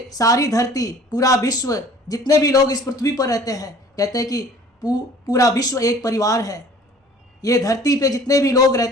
सारी धरती, पूरा विश्व, जितने भी लोग इस पृथ्वी पर रहते हैं, कहते हैं कि पूरा विश्व एक परिवार है। ये धरती पे जितने भी लोग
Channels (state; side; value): normal; both; correlation 0.50